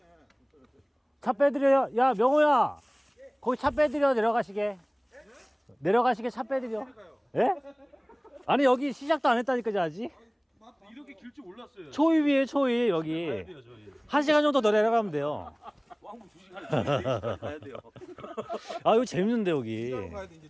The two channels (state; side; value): identical; both; correlation 1.00